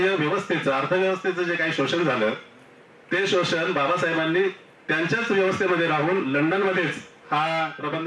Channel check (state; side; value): identical; both; correlation 1.00